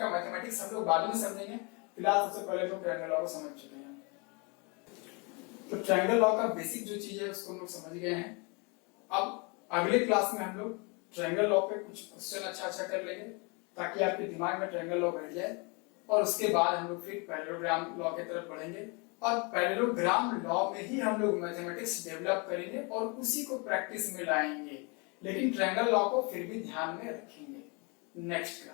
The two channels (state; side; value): quieter; right; 31.3 dB